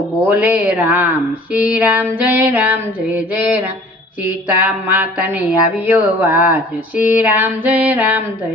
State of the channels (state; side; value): normal; both; correlation 0.50